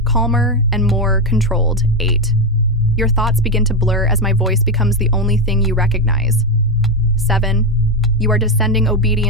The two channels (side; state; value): both; normal; correlation 0.07